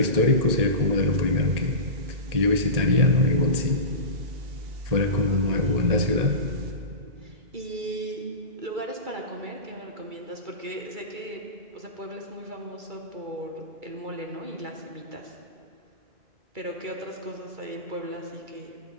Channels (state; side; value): late; left; 1.8 ms